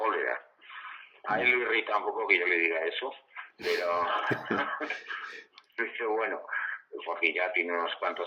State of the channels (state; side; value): identical; both; correlation 1.00